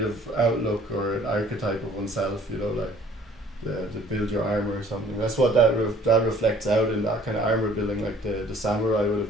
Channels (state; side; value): normal; both; correlation 0.55